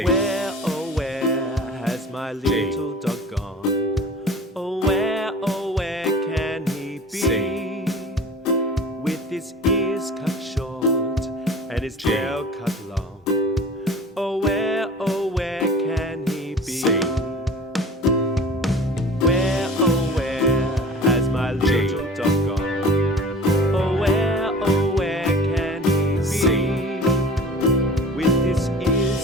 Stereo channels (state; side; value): normal; both; correlation 0.42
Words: Where, oh where has my little dog gone?